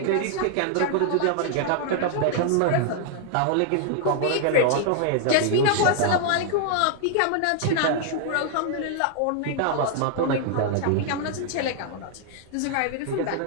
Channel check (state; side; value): different; both; correlation 0.00